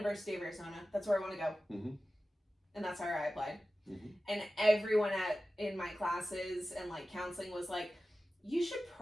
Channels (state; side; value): normal; both; correlation 0.95